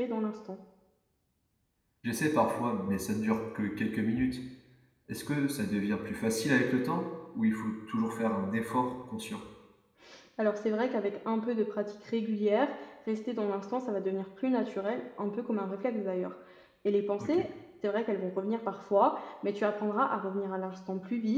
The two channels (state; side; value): identical; both; correlation 1.00